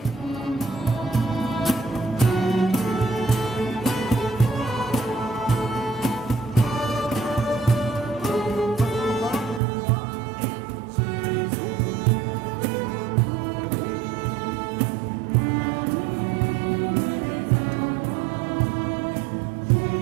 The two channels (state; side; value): drops out; left; at 9.6 s